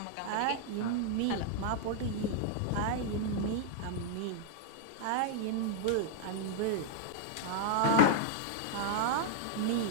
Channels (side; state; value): both; different; correlation -0.01